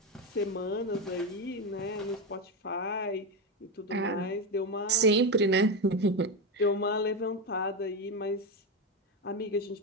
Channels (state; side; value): normal; both; correlation 0.13